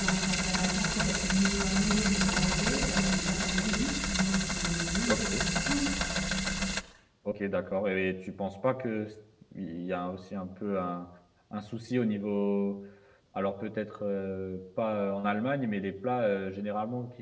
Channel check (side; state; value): both; identical; correlation 1.00